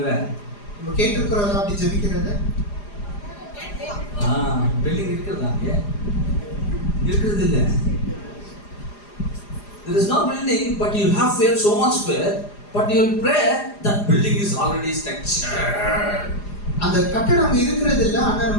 நம்ம கேட்டிருக்கிறோம் அப்படி ஜெபிக்கிறது. பில்டிங் இருக்குதா? அங்க இருக்குது இல்ல. There is no building, but you have faith, so much faith, but you will pray that building is already structured. அந்த கட்டடம் அங்க இருக்கிறது இல்ல, ஆனா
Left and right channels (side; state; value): right; late; 4.9 ms